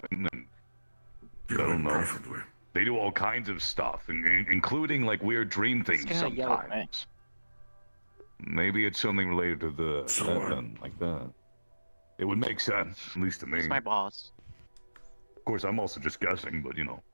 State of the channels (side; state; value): both; inverted; correlation -1.00